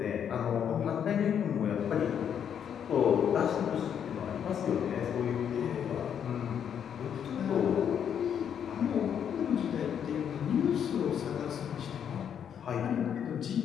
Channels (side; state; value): right; quieter; 8.5 dB